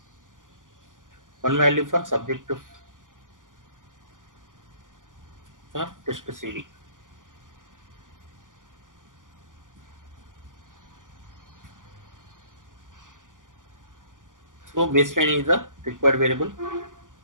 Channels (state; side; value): late; left; 0.88 ms